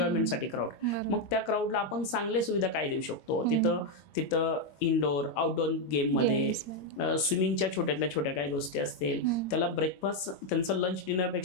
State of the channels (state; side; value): late; right; 21 ms